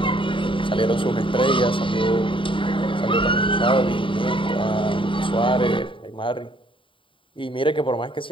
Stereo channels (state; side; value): late; right; 0.25 ms